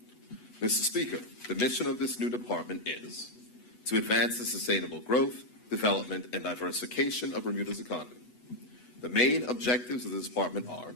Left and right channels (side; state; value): right; late; 8.1 ms